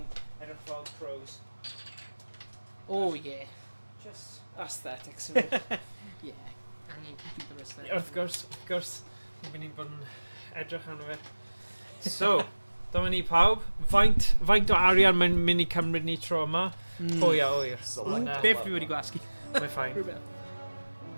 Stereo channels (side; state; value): both; inverted; correlation -1.00